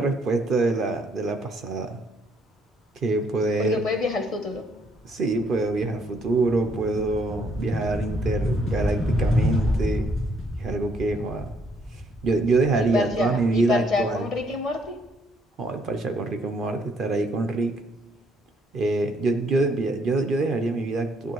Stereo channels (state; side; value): normal; both; correlation 0.69